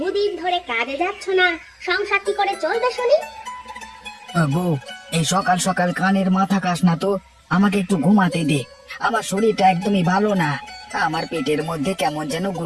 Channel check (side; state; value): both; identical; correlation 1.00